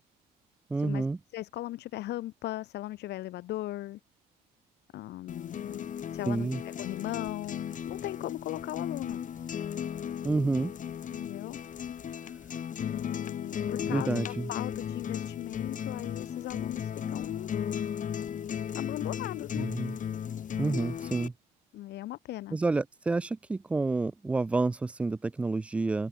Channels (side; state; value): both; normal; correlation 0.70